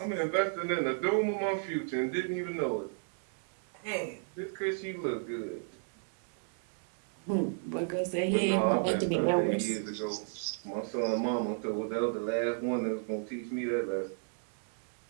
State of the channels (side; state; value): left; silent; digital silence